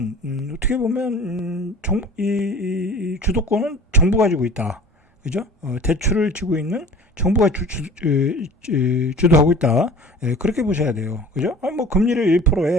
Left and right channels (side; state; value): both; normal; correlation 0.43